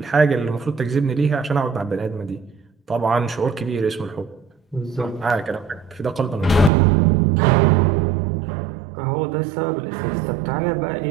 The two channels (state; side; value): drops out; left; at 6.7 s